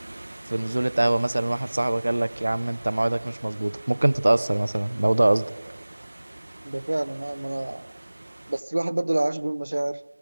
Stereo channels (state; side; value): inverted; both; correlation -1.00